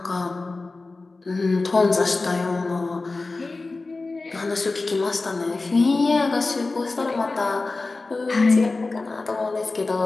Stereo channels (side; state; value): right; quieter; 3.5 dB